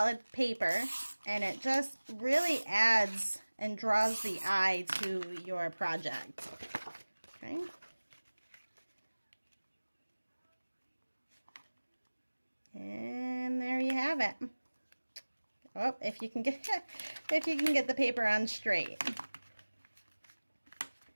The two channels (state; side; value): inverted; both; correlation -1.00